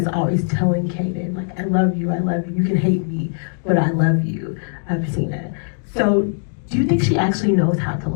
always telling Kanan, like, I love you, you can hate me, but I love you, Patina. So do you think she actually knows how to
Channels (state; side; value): silent; right; 65 dB below the other